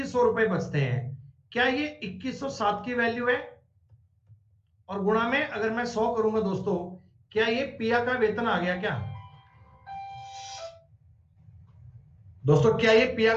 रुपए बचते हैं। क्या ये 2107 की वैल्यू है? और गुणा में अगर मैं 100 करूंगा दोस्तों, क्या ये पिया का वेतन आ गया क्या? दोस्तों क्या ये पिया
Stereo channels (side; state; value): both; identical; correlation 1.00